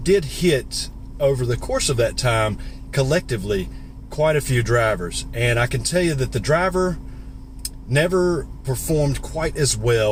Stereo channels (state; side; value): identical; both; correlation 1.00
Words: hit, over the course of that time, collectively, quite a few drivers. And I can tell you that the driver never performed quite as